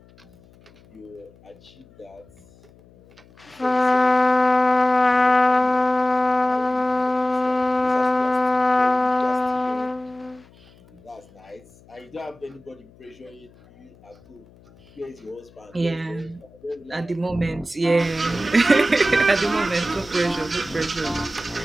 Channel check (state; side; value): noise; left; hum, 27 dB below the sound